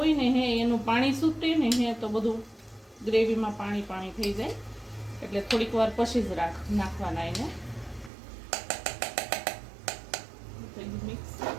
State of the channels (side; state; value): left; drops out; at 8.1 s